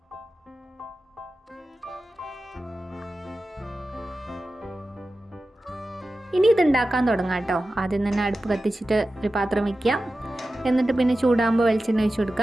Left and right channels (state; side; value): normal; both; correlation 0.94